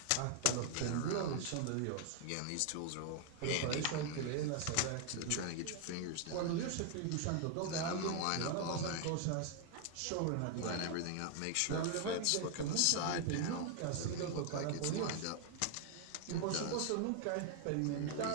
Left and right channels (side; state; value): both; different; correlation 0.00